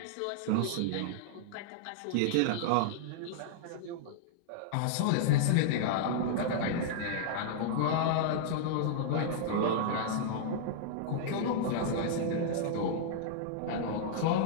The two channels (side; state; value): both; different; correlation -0.01